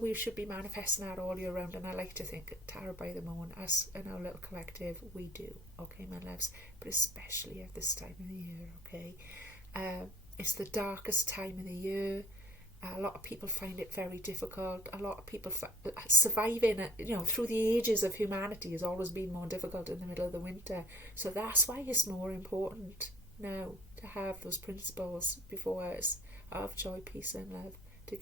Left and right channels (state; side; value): normal; both; correlation 0.48